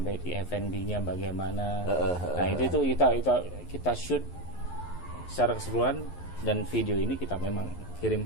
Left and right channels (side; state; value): right; late; 11 ms